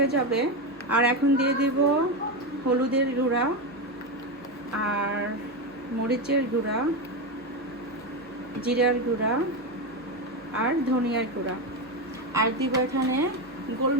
যাবে। আর এখন দিয়ে দিব হলুদের গুঁড়া আর মরিচের গুঁড়া, জিরার গুঁড়া আর ধনিয়ার গুঁড়া। আর দিব এখানে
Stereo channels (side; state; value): both; normal; correlation 0.13